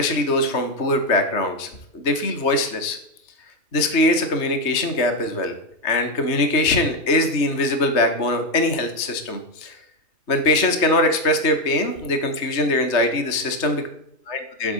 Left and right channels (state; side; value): late; right; 3.2 ms